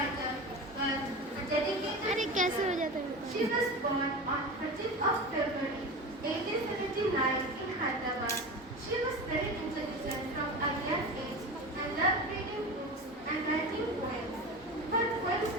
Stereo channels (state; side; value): normal; both; correlation 0.28